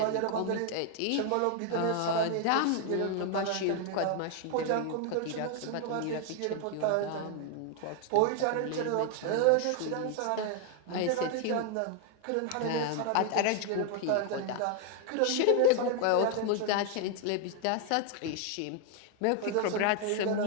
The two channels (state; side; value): different; both; correlation 0.00